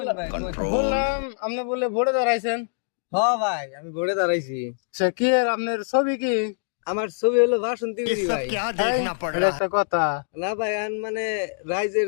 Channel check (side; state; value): right; silent; digital silence